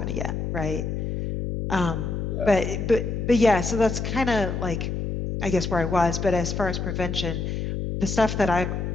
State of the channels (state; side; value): noise; left; hum, 3 dB below the sound